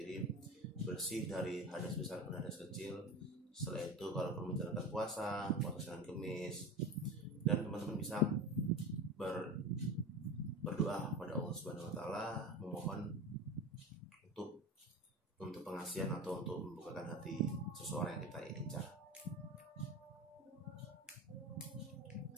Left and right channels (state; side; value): normal; both; correlation 0.28